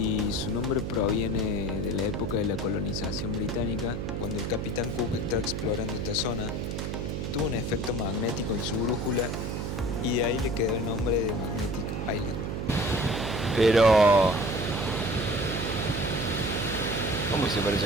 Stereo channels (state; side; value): noise; right; hum, 3 dB below the sound